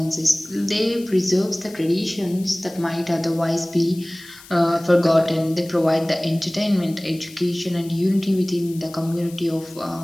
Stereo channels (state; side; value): noise; left; hiss, 20 dB below the sound